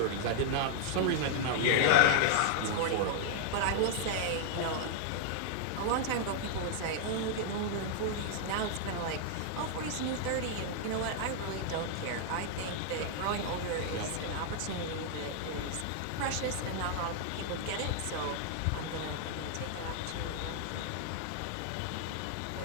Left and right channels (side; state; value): both; different; correlation -0.01